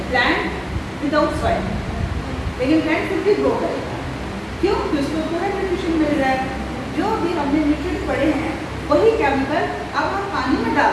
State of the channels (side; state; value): both; identical; correlation 1.00